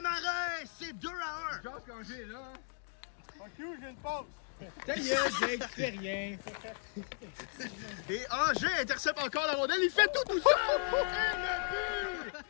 c'est 2-1. Je pense qu'Anger est là. Fuck you, j'ai une pause. Ta gueule, Jake, tu fais rien. Et Anger intercepte encore la rondelle, il fait tout seul! Et le but!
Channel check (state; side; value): silent; right; digital silence